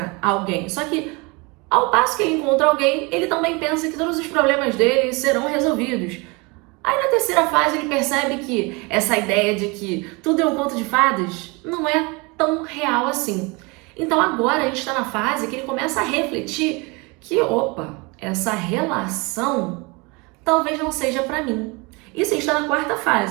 alguém. Só que ao passo que ele encontra alguém, ele também pensa que todos os problemas dele serão resolvidos. Aí na terceira fase ele percebe que essa ideia de que tudo é um conto de fadas não é tão real assim. Então agora a gente está na fase que ele começa a refletir que, essa relação talvez não seja para mim. Isso está na quarta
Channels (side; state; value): left; quieter; 27.6 dB